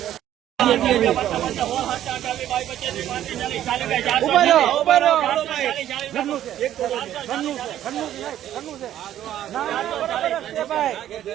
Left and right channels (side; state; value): left; quieter; 11.8 dB